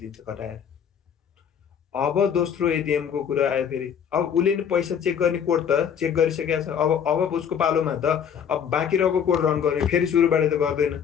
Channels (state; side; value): quieter; right; 7.9 dB